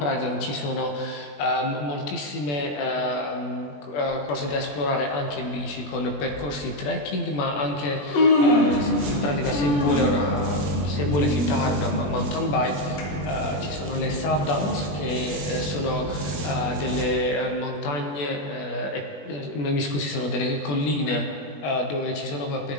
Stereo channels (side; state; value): right; late; 21 ms